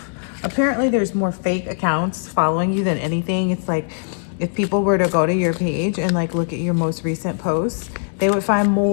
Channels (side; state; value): right; silent; 65 dB below the other